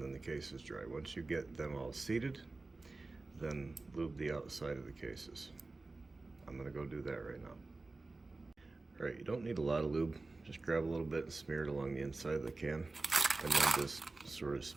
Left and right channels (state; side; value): quieter; left; 3.4 dB